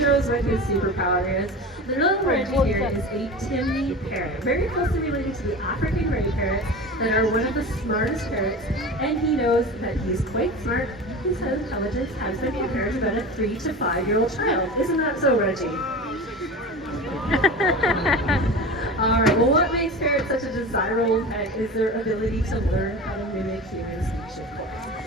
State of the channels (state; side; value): normal; both; correlation 0.31